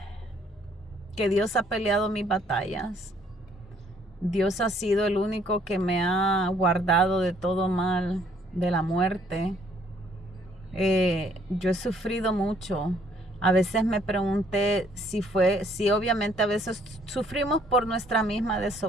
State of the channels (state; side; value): normal; both; correlation 0.64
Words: Dios ha peleado mis batallas. Dios ha sido el único que me ha guardado de todo mal, de la muerte. Yo he sufrido mucho. A veces me pregunté si obviamente a veces sufrimos por nuestra misma